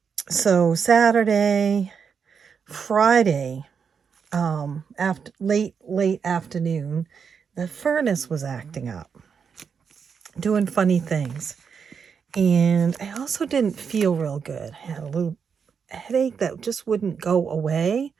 So Saturday, Friday, after late afternoon, the furnace was acting up, doing funny things. And I also didn't feel real good. I had a little headache that just wouldn't go away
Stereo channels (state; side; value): quieter; left; 6.4 dB